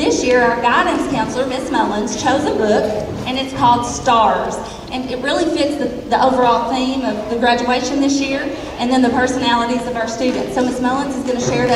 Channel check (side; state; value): both; identical; correlation 1.00